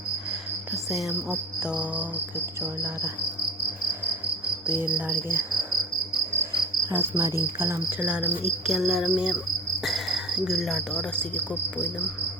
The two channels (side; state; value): both; normal; correlation 0.37